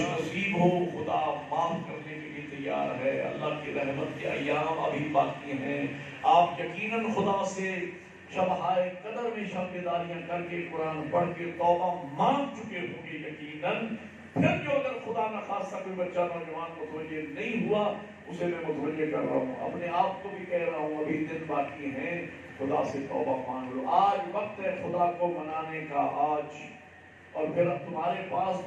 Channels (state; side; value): identical; both; correlation 1.00